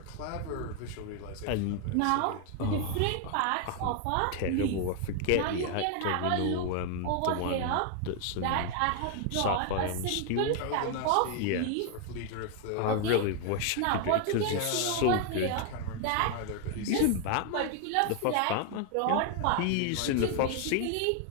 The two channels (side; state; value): both; different; correlation 0.00